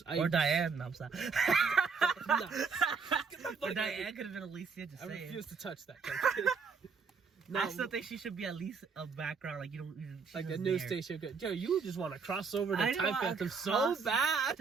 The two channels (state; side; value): quieter; left; 5.4 dB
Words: Diane. No, I'm sorry. No. But Diane could have been Alicia. Just I saying. refuse to touch that. No, I still think she should be at least a background, like like a news station. Yo, you just want to cross over to I Time know, Phantom so bad.